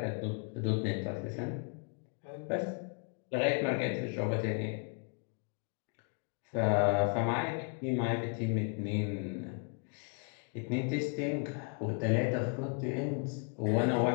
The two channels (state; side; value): quieter; right; 38.7 dB